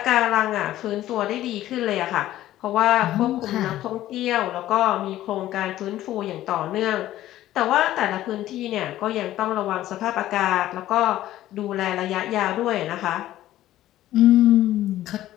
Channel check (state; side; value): quieter; right; 14.0 dB